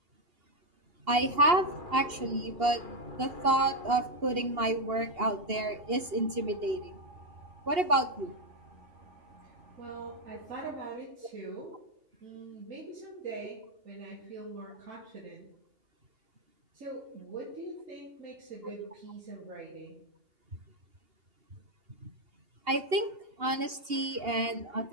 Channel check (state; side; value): late; left; 2.8 ms